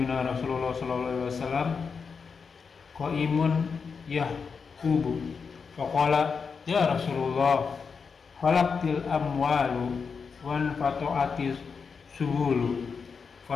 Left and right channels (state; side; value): quieter; right; 5.5 dB